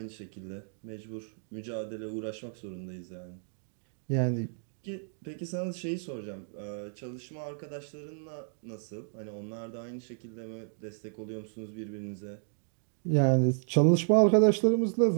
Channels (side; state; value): left; silent; digital silence